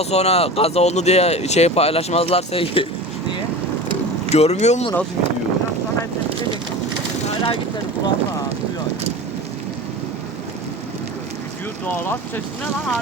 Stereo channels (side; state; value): both; normal; correlation 0.33